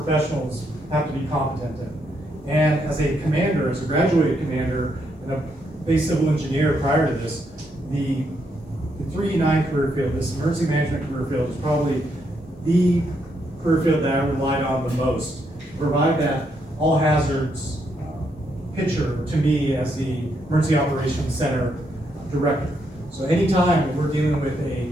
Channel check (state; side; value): normal; both; correlation 0.77